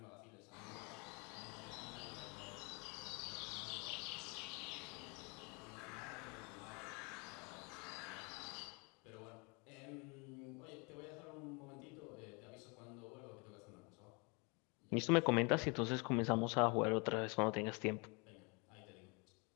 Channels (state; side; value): quieter; right; 31.4 dB